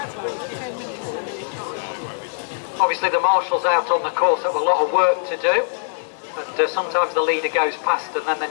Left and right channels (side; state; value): right; silent; digital silence